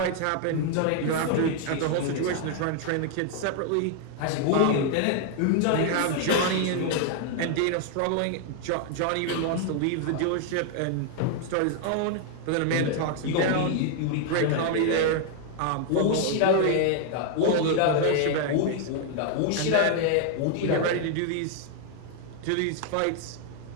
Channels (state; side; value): different; both; correlation 0.00